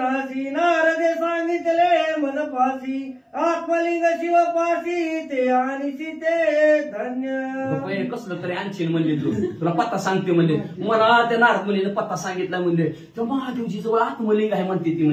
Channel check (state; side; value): identical; both; correlation 1.00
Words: नारदे सांगितले मनपाशी, आत्मलिंग शिवपाशी ते आणि सीते धन्य. कसलं तरी आणशील म्हणले तुला पत्ता सांगते म्हणले, मला त्या नारद मुलीने पत्ता सांगितला म्हणले, तर महादेवजी जवळ आत्मलिंग आहे म्हणते ती